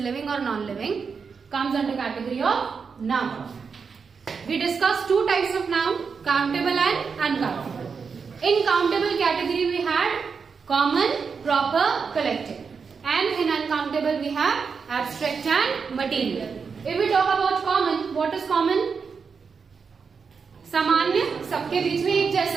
or non-living, comes under category of noun. We discussed two types of noun, countable and uncountable. In countable category we had common, proper, collective, and in uncountable we have abstract and material. If we talk about common, what is common? सामान्य, सबके बीच में एक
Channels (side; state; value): left; quieter; 5.6 dB